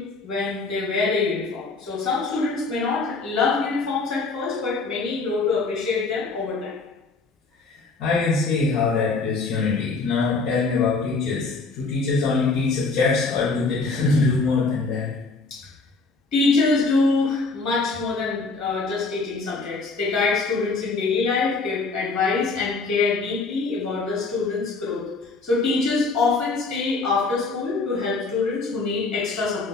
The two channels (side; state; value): right; quieter; 3.9 dB